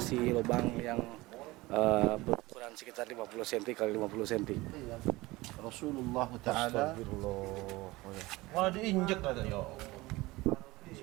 lubang yang berukuran sekitar 50 cm kali 50 cm. Rasulullah Ta'ala. Astagfirullah. Wah, diinjek katanya.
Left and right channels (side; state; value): left; quieter; 20.7 dB